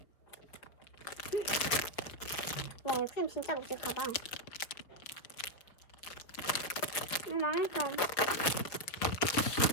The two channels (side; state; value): right; late; 5.0 ms